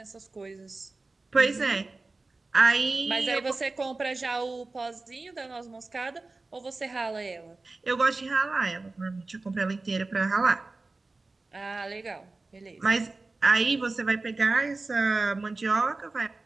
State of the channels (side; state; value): left; quieter; 3.4 dB